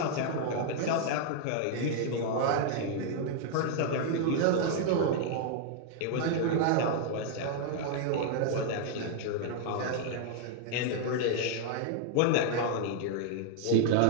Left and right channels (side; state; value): both; different; correlation 0.00